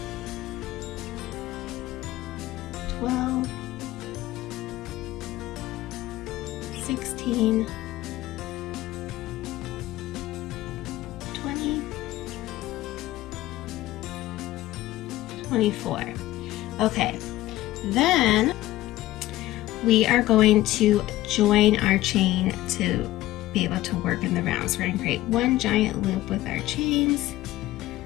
12, 16, 20, 24. Okay, then we are going to join our chain to be able to work in the round. So we're going to create one giant loop with our chains,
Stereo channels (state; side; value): quieter; right; 16.2 dB